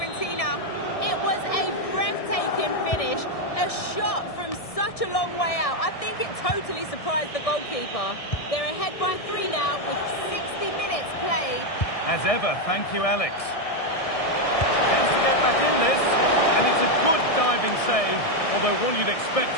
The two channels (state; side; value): late; right; 1.6 ms